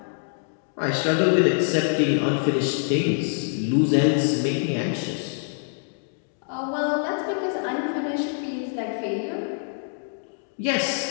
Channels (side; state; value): right; silent; 62 dB below the other